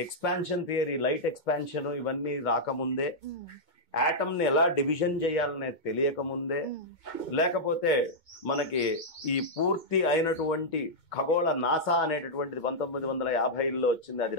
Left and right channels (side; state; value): right; late; 2.2 ms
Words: ఎక్స్పాన్షన్ థియరీ, లైట్ ఎక్స్పాన్షన్ ఇవన్నీ రాకముందే, ఆటమ్ ని ఎలా డివిజన్ చేయాలనేది తెలియకముందే, లేకపోతే మనకి ఈ పూర్తి అయినటువంటి ఖగోళ నాసా అనేటటువంటిది 1950లో వచ్చింది, అది